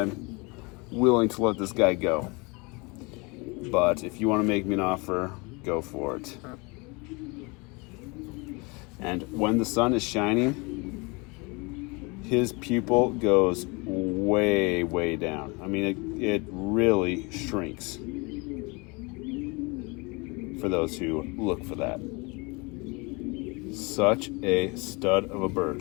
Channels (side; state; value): right; quieter; 28.0 dB